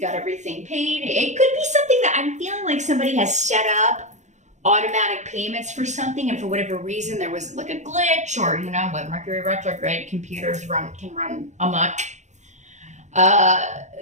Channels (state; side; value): late; left; 0.34 ms